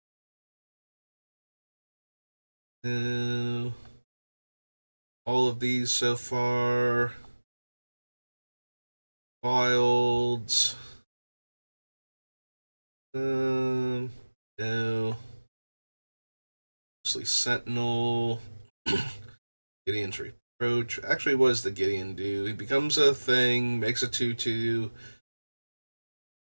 All of these so far. Wilds. No. Mostly Sentinel. Gideon's Reproach. Actually, what does the Gideon do? He becomes a thing, makes a 2/2.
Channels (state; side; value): inverted; both; correlation -1.00